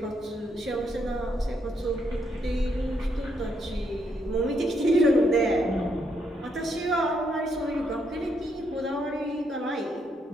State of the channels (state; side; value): normal; both; correlation 0.76